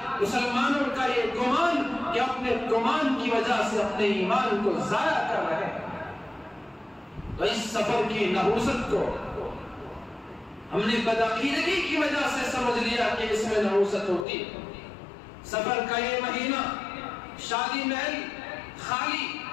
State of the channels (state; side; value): drops out; right; at 14.2 s